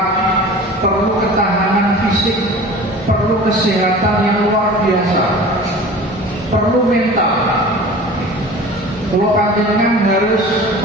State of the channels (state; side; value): normal; both; correlation 0.40